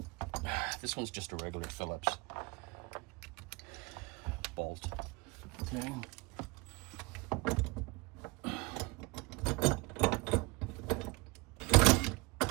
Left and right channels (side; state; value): left; quieter; 25.4 dB